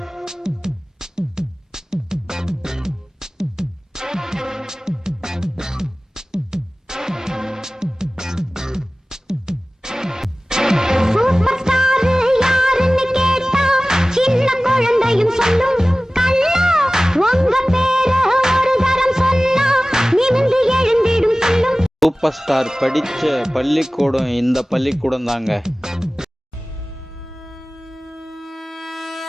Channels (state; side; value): normal; both; correlation 0.98